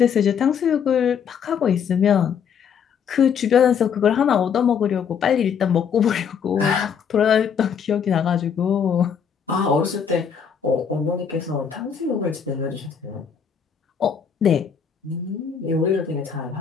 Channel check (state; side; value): quieter; right; 7.2 dB